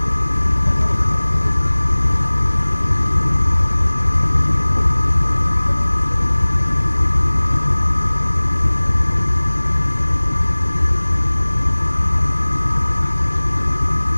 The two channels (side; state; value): both; inverted; correlation -1.00